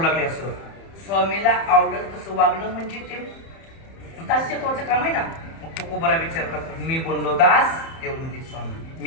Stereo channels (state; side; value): late; right; 30 ms